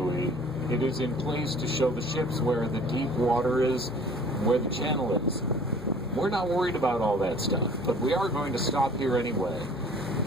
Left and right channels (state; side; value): noise; left; hum, 18 dB below the sound